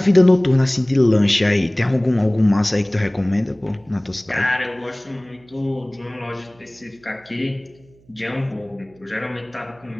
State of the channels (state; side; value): noise; right; hum, 30 dB below the sound